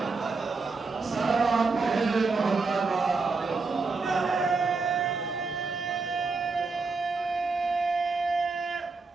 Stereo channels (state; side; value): quieter; left; 4.2 dB